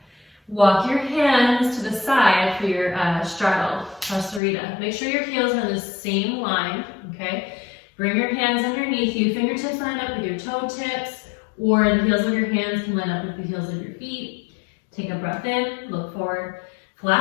Walk your hands to the side for your straddle, pasarita. Make sure your heels are in the same line, okay? Bring your hands underneath you. Fingertips line up with your toe tips, or the heels of your hands can line up with the heels of your feet. Take a breath in, look forward,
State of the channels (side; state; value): right; drops out; at 4.4 s